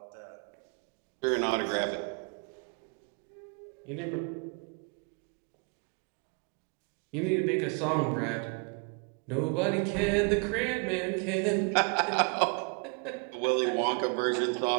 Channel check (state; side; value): quieter; left; 36.8 dB